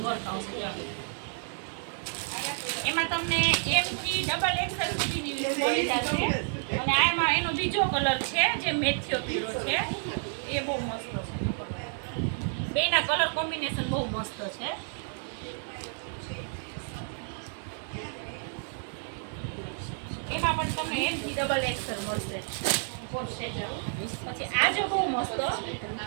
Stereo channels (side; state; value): left; silent; 58 dB below the other